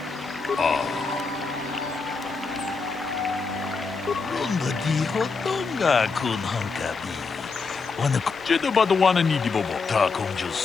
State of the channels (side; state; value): right; quieter; 4.6 dB